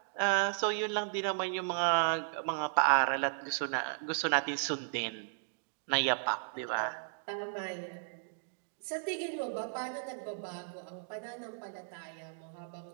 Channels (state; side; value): silent; left; digital silence